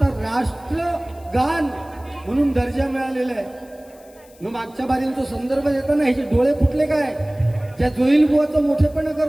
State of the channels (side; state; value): left; noise; hiss, 27 dB below the sound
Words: राष्ट्रगान म्हणून दर्जा मिळालेला आहे. मग मागच्या बारींचा संदर्भ देताना ह्याचे डोळे फुटले काय, त्या जोईल बुवाचा मोठेपणा